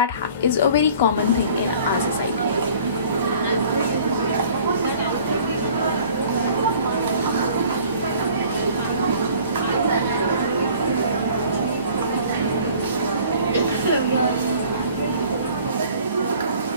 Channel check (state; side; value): inverted; both; correlation -0.51